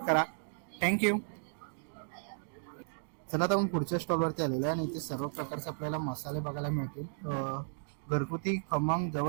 करा. थँक्यू. चला आता आपण पुढच्या स्टॉलवरती आलेलो आहे आणि इथे सर्व प्रकारचे आपल्याला मसाले बघायला मिळतील. घरगुती खमंग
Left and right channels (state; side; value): silent; left; digital silence